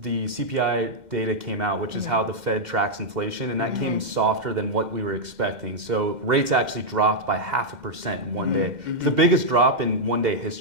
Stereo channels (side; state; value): left; late; 2.1 ms